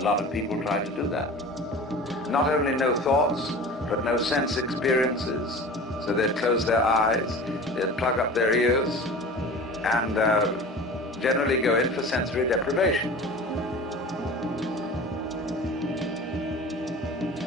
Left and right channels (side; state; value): both; normal; correlation 0.37